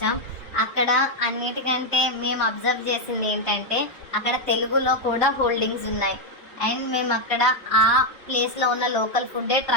అక్కడ అన్నిటికంటే మేము అబ్జర్వ్ చేసింది ఏంటంటే అక్కడ తెలుగులో కూడా హోల్డింగ్స్ ఉన్నాయి. అండ్ మేము అక్కడ ఆ ప్లేస్లో ఉన్న లోకల్ ఫుడ్డే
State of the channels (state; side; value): normal; both; correlation 0.02